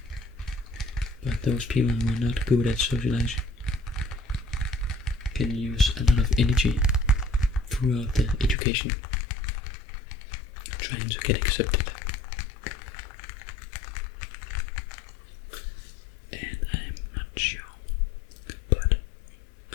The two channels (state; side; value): drops out; right; at 8.6 s